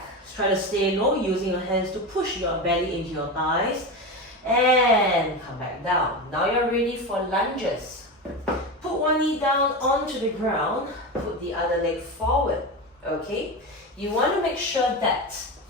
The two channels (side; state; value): both; normal; correlation 0.21